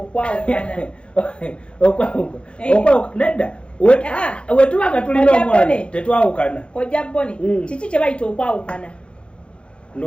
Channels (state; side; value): late; right; 0.058 ms